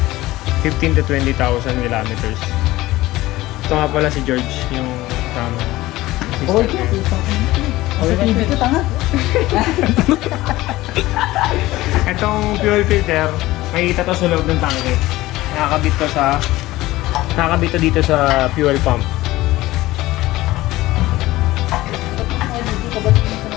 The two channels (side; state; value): right; quieter; 17.6 dB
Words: 15 to 20,000 kilometers. Ito nga pala si George, yung tama. Oh, sa TV ko, tanga. Itong fuel filter, makikita to sa loob ng tangke. Nakakabit to dito sa fuel pump.